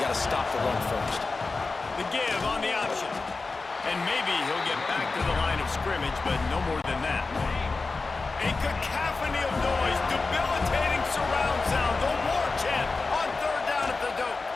to stop the run first. The give on the option. And maybe he'll get back to the line of scrimmage, but no more than that. A cacophony of noise, debilitating surround sound, the war chant on 3rd down at the dope.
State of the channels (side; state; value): right; quieter; 3.9 dB